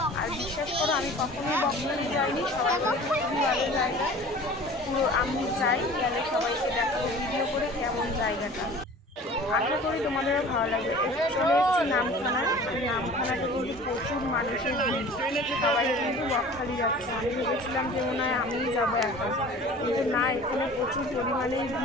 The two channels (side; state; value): both; normal; correlation 0.43